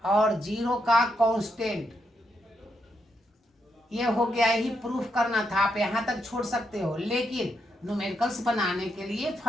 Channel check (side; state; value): both; normal; correlation 0.80